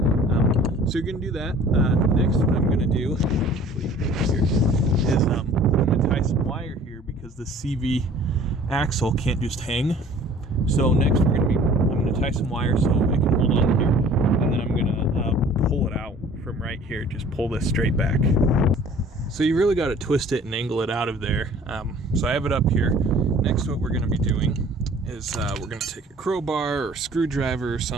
So you're going to do that. Next, what I'm going to do is I'm going to tie some wire here, because the CV axle can't just hang. So next I'm going to tie some wire so it can hold on here, and then I'm going to pull it out from right here. Just pull this straight back. So you really got to twist it and angle it out of there. So I have it up here. Next, what we're going to be doing is we're going to take a crowbar or screwdriver or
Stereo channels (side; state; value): both; normal; correlation 0.50